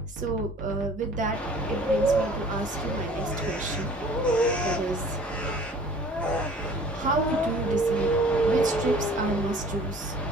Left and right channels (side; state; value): both; normal; correlation 0.49